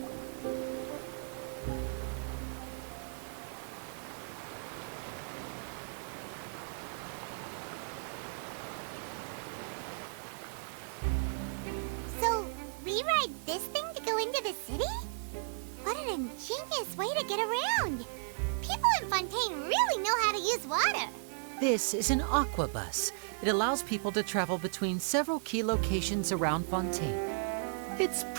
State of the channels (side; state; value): left; silent; 54 dB below the other